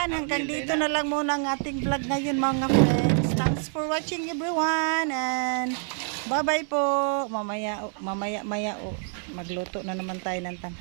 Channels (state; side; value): silent; left; 55 dB below the other